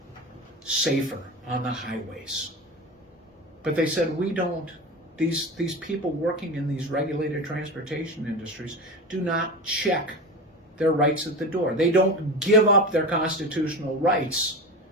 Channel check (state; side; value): normal; both; correlation 0.26